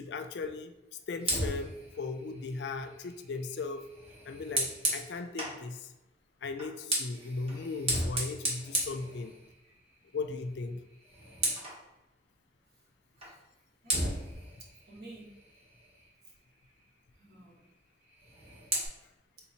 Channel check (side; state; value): both; normal; correlation 0.25